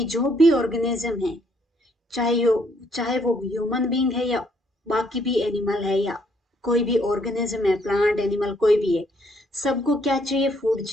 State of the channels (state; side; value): normal; both; correlation 0.69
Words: जो भी ऑर्गेनिज्म है, चाहे वो ह्यूमन बीइंग है या बाकी भी एनिमल है, या कोई भी ऑर्गेनिज्म है, प्लांट एनिमल कोई भी है, सबको क्या चाहिए? फूड